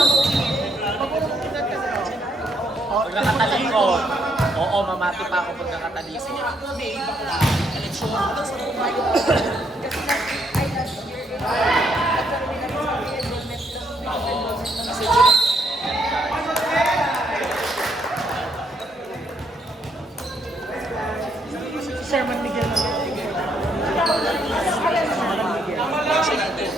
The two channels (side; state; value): both; normal; correlation 0.72